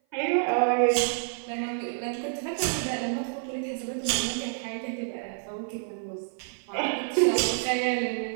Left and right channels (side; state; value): left; silent; 56 dB below the other